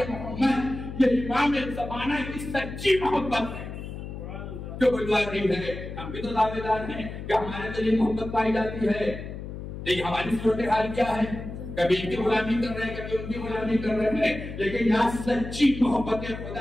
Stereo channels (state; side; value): noise; left; hum, 9 dB below the sound